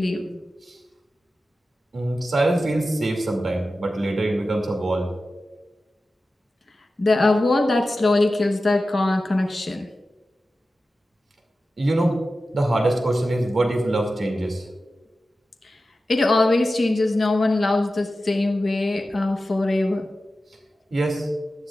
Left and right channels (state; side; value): normal; both; correlation 0.93